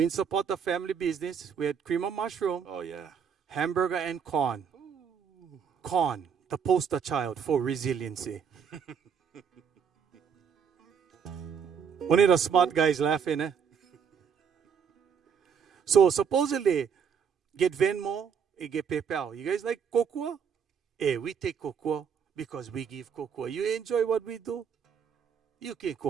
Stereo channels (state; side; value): quieter; left; 7.1 dB